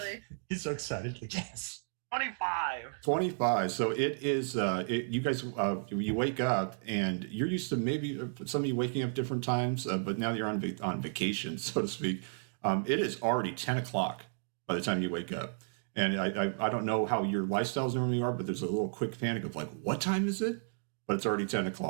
He's so excited. Like, yes. 25. So it is. You guys, you wake up, and you're used to maybe some of you waking up different times, but now you're on vacation, so to speak. It is already 10 o'clock by the time you wake up. And I don't know how your lifestyles normally are, but there's a little quick panic of like, what time is it? But it's already 10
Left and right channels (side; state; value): left; silent; digital silence